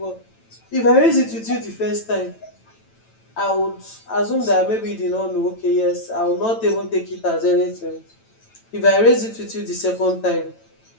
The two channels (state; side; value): late; right; 9.0 ms